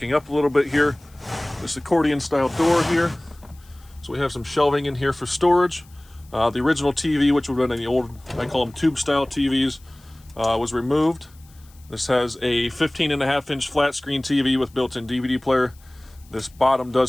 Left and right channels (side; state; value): left; noise; hiss, 28 dB below the sound